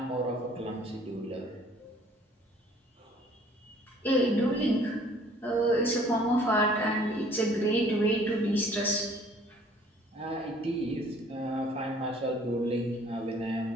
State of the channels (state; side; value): normal; both; correlation 0.56